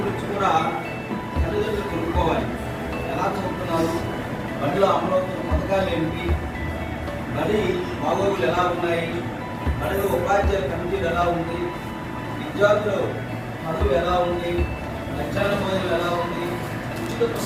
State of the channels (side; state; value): both; identical; correlation 1.00